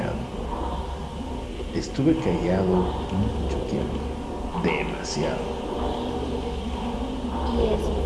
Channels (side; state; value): both; identical; correlation 1.00